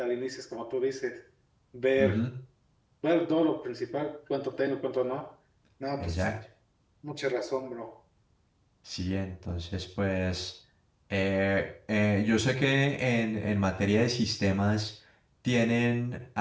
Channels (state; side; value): identical; both; correlation 1.00